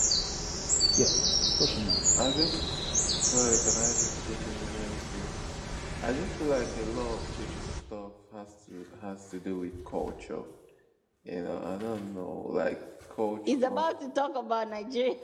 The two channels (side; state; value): both; identical; correlation 1.00